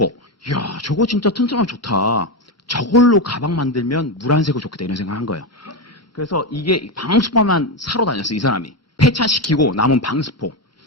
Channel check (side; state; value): both; normal; correlation 0.12